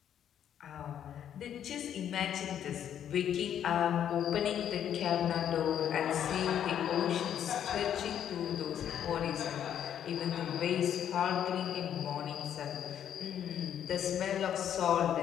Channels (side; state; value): right; quieter; 9.7 dB